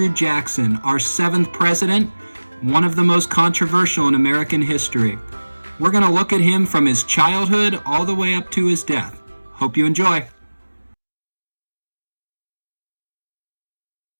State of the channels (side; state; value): both; inverted; correlation -1.00